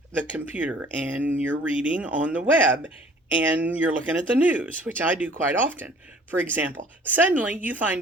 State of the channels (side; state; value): both; normal; correlation 0.52